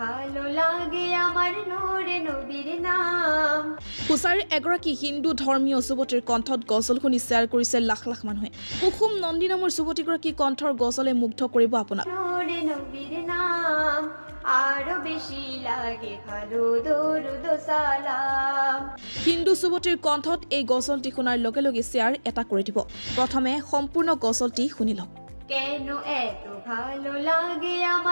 ভালো লাগে আমাৰ নূৰে নবীৰ নাম। হুছাৰীৰ এগৰাকী হিন্দু ধৰ্মীয় যুৱতীৰ কণ্ঠত গজল শুনি শ্বেয়াৰ কৰিছে লাখ লাখ মানুহে। কুসুম নন্দী নামৰ যুৱতীগৰাকী কণ্ঠৰ গজলে মুগ্ধ কৰিব আপোনাক। নূৰে নবীৰ নাম আৰু বেছি লাগে ভালো দৰুদ সালাম। হিন্দু যুৱতীৰ কণ্ঠত এই গজলটি শুনাৰ লগে লগে শ্বেয়াৰ এটা কৰি দিব। প্ৰথমে সম্পূৰ্ণ গজলটি শুনি লওক। কেন এত ভালো লাগে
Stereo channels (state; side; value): inverted; both; correlation -1.00